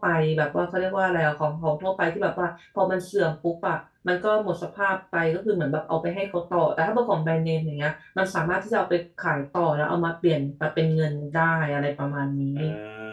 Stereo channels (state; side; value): identical; both; correlation 1.00